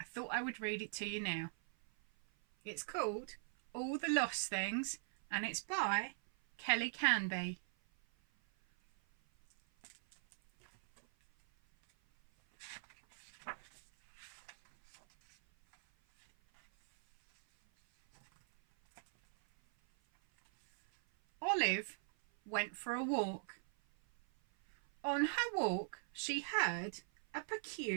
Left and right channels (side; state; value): left; silent; 51 dB below the other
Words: thought I would read it to you now. It's called All the Lost Things and it's by Kelly Canby. Olive went for a walk. On her walk, she heard a